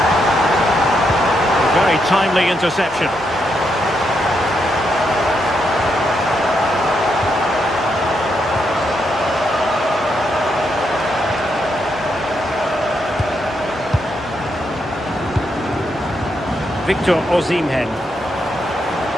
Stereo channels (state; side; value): normal; both; correlation 0.80